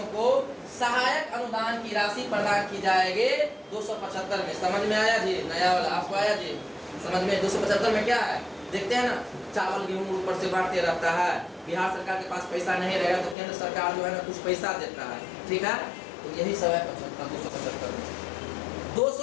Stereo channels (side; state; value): right; drops out; at 13.4 s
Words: को सहायक अनुदान की राशि प्रदान की जाएगी 275 में। समझ में आया जी? नया वाला आपको आया जी समझ में? 275 में क्या है देखते हैं ना, चावल गेहूं ऊपर से बांटते रहता है, बिहार सरकार के पास पैसा नहीं रहेगा तो केंद्र सरकार जो है ना कुछ पैसा देता है, ठीक है। तो यही सब है 275 में।